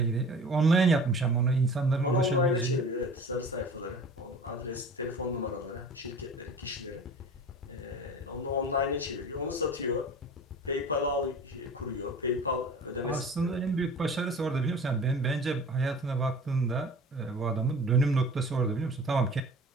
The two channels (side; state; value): both; normal; correlation 0.41